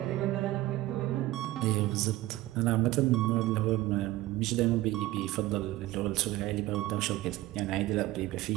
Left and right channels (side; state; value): left; quieter; 16.8 dB